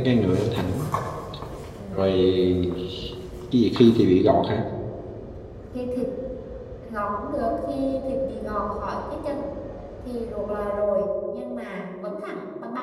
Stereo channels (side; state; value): both; identical; correlation 1.00